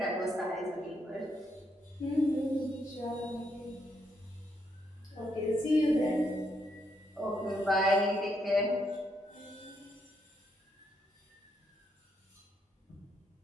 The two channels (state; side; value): normal; both; correlation 0.77